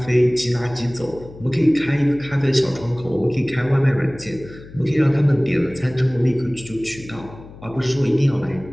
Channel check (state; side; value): noise; left; hum, 18 dB below the sound